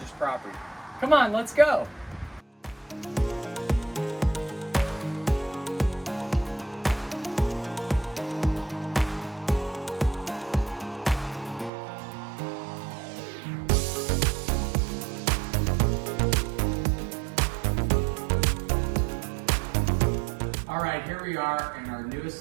property. Come on, let's go. All right, here we are in our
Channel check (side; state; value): left; drops out; at 11.7 s